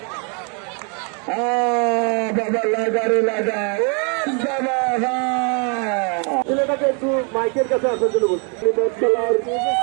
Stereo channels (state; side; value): quieter; left; 36.6 dB